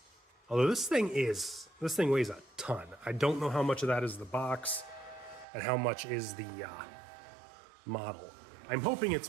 Although this thing weighs a ton. I don't know how much of that is the box and how much is the model. I'm hoping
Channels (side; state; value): left; drops out; at 5.5 s